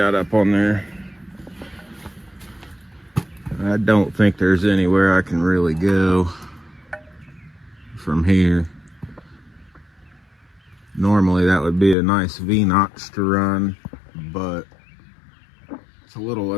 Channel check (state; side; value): drops out; right; at 12.0 s